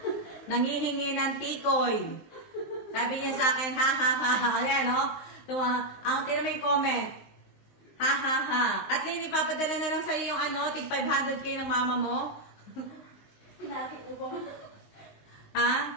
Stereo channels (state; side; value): late; right; 19 ms